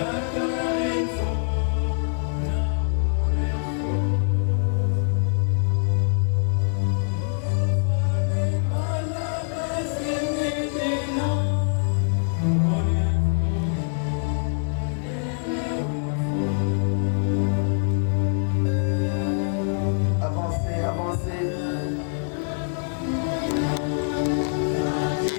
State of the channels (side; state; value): right; silent; digital silence